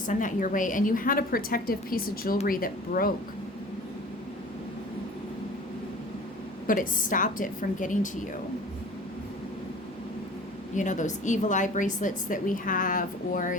that your way, and you had a protective piece of jewelry that broke, but it stopped it from getting to you. You know, those evil eye bracelets that we have,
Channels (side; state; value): both; normal; correlation 0.43